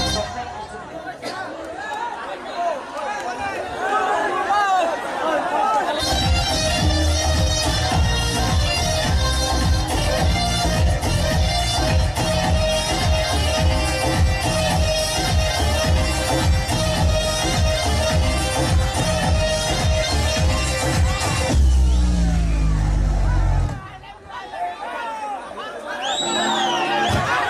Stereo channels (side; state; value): both; identical; correlation 1.00